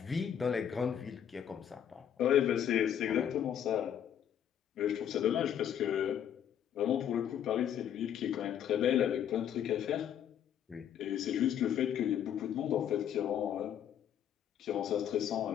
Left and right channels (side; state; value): right; quieter; 9.5 dB